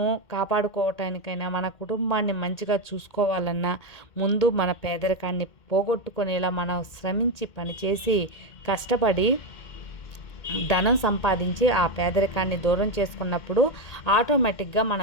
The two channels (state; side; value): late; right; 2.1 ms